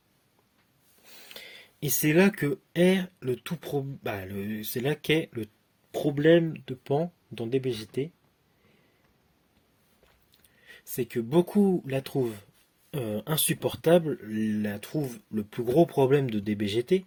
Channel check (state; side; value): identical; both; correlation 1.00